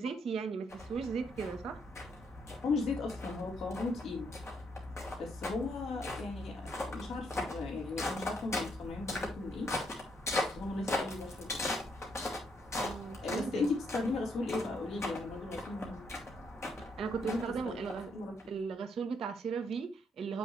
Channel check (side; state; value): both; normal; correlation 0.74